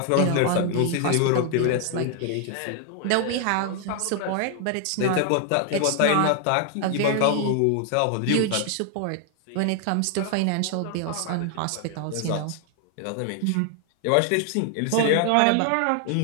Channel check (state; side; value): different; both; correlation 0.00